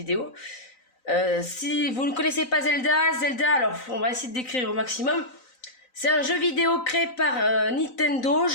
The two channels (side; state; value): right; late; 3.9 ms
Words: Si vous ne connaissez pas Zelda, alors on va essayer de décrire au maximum. C'est un jeu vidéo créé par Nintendo,